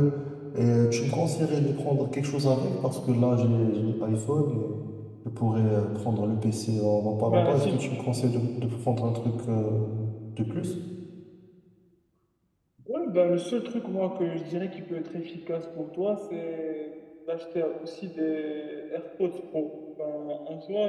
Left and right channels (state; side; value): identical; both; correlation 1.00